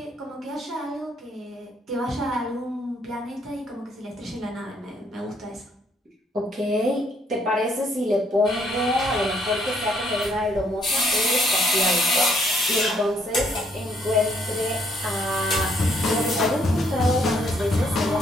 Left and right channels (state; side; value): normal; both; correlation 0.68